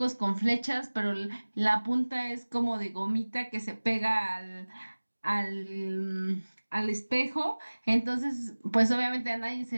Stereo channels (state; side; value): inverted; both; correlation -1.00